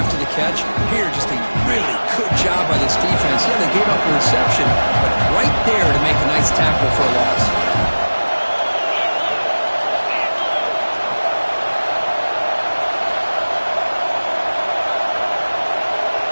the catch? Here, just a really good job by this defense. Yeah, they gave up a reception, but right there to make a nice tackle for a loss.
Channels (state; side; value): inverted; both; correlation -1.00